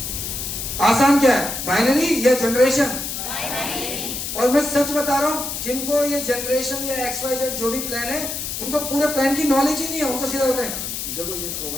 आसान क्या है, बाइनरी या जनरेशन? और मैं सच बता रहा हूं, जिनको ये जनरेशन या XYZ जो भी प्लान है, उनको पूरे प्लान की नॉलेज ही नहीं है। उनको सीधा होता है, देखो ये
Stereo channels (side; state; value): left; noise; hiss, 5 dB below the sound